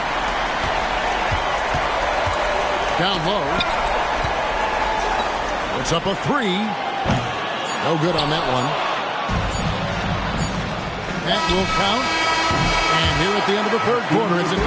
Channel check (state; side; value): identical; both; correlation 1.00